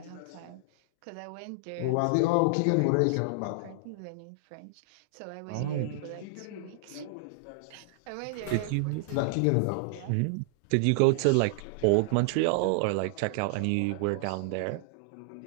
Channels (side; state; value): both; different; correlation 0.00